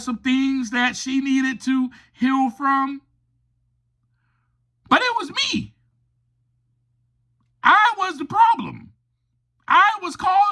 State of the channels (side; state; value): both; identical; correlation 1.00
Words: some things that she needed to heal from. But it was me. I was the problem. I was